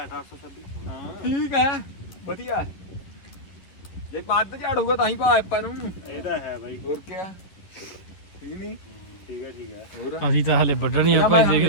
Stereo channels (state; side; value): late; right; 11 ms